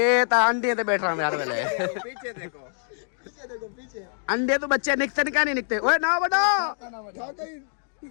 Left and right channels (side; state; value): right; silent; digital silence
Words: ता अंडे ते बैठ रहा मैं यार वेले। पीछे देखो पीछे अंडे तो बच्चे निकते नहीं, क्या नहीं निकते? ओए ना बड़ा